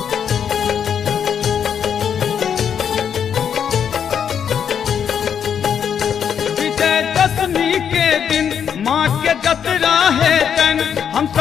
माँ के जतरा है तन हम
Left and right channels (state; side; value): quieter; right; 8.0 dB